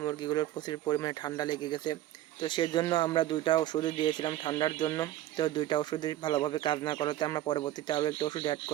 মুরগিগুলোর প্রচুর পরিমাণে ঠান্ডা লেগে গেছে। তো সেজন্য আমরা 2টা ওষুধ দিয়েছিলাম ঠান্ডার জন্য। তো 2টা ওষুধে ভালোভাবে কাজ না করাতে আমরা পরবর্তীতে আরও একটা ওষুধ অ্যাড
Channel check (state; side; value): quieter; left; 13.8 dB